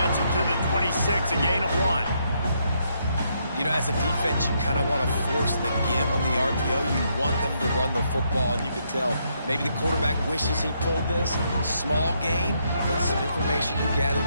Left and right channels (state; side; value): inverted; both; correlation -0.75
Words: it to the 26, a gain of 1. You know, as a defense, you kind of want to force the give on the RPO. You want them to run the football, and you could tell maybe the quarterback wishes he pulled this. Small gain, but some information you